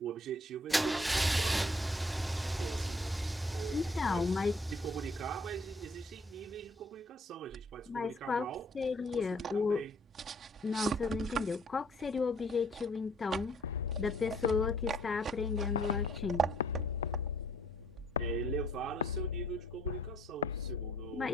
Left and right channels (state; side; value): normal; both; correlation 0.61